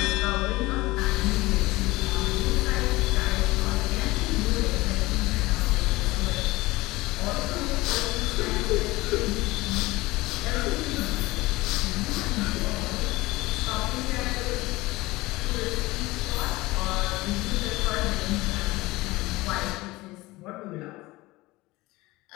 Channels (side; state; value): right; quieter; 20.3 dB